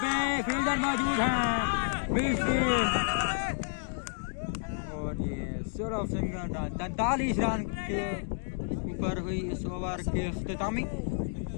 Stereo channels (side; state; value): right; silent; digital silence